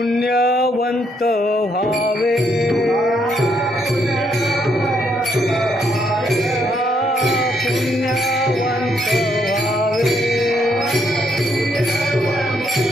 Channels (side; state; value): both; normal; correlation 0.73